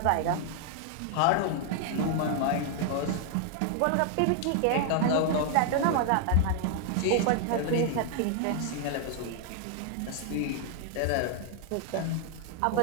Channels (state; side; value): different; both; correlation 0.00